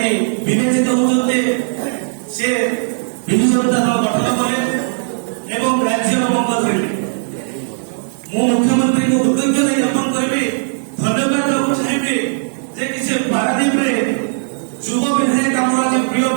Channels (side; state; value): left; silent; 68 dB below the other